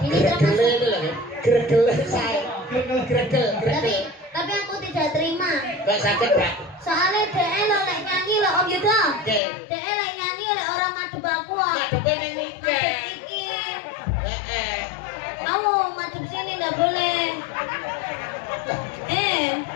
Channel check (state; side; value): drops out; right; at 9.4 s